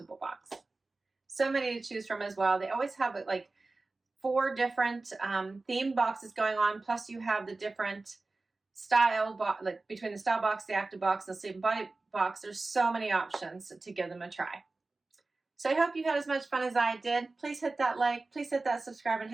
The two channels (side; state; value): left; quieter; 3.4 dB